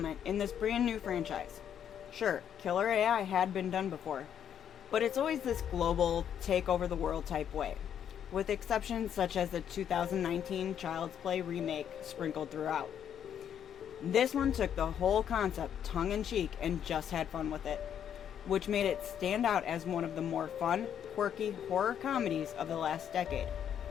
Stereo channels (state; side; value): quieter; right; 9.1 dB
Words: in this brand new franchise. Sure, killer AI had been done before, but it's always this global, take over the world type way, with exceptions such as the 2019 Child's Play remake sprinkled throughout. This one took the whole concept tongue-in-cheek and just had fun with it, which made it stand out as one of the more fun, quirky horror comedies of the last decade.